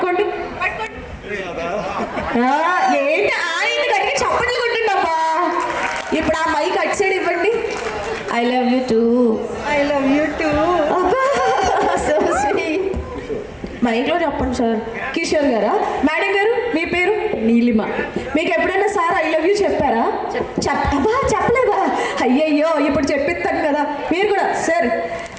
ఏంటి ఆయన గట్టిగా చప్పట్లు కొట్టండి అబ్బా ఇప్పుడు ఆ మైక్ అటు సైడ్ ఇవ్వండి I love you two I love you two so sweet మైక్లో చెప్పండి సార్ కిషోర్ గారా మేడం గారు మీ పేరు నీలిమ మీకు ఎప్పుడైనా సార్ ఐ లవ్ యూ చెప్పారా అబ్బా చెప్పలేదా అయ్యయ్యో ఇప్పుడు చెప్పిస్తాను కదా మీరు కూడా సార్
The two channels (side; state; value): both; identical; correlation 1.00